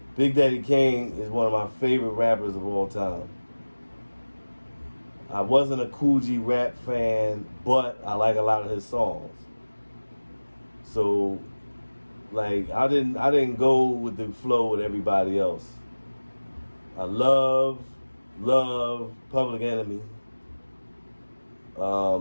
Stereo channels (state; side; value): inverted; both; correlation -1.00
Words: Big Daddy Kane is one of my favorite rappers of all time. I wasn't a Kool G Rap fan, but I like a lot of his songs. So, like, I didn't go with the flow with everybody else. I love Public Enemy.